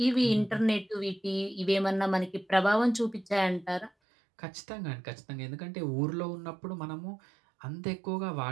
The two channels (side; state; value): left; drops out; at 3.9 s